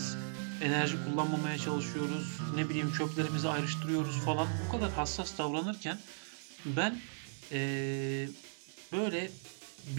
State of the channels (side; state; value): left; silent; 53 dB below the other